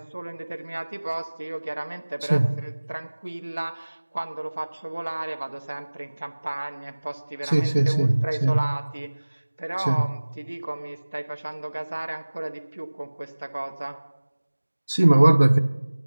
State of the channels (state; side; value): inverted; both; correlation -1.00